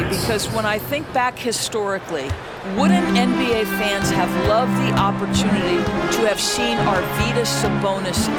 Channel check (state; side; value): identical; both; correlation 1.00